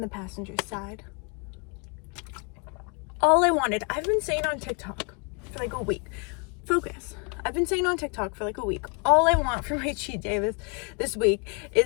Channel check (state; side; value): quieter; right; 34.8 dB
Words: the passenger side. All I wanted, I've been saying on TikTok for like a week, focus. I've been saying on TikTok for like a week, all I want for my cheat day this week